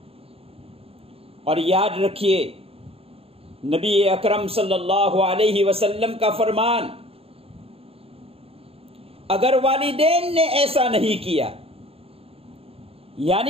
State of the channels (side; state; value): left; late; 0.28 ms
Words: और याद रखिए, नबी अकरम सल्लल्लाहु अलैहि वसल्लम का फरमान, अगर वालिदैन ने ऐसा नहीं किया,